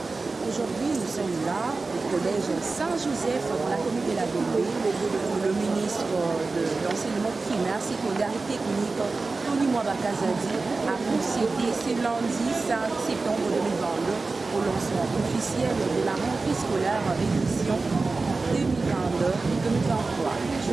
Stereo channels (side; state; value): left; quieter; 3.8 dB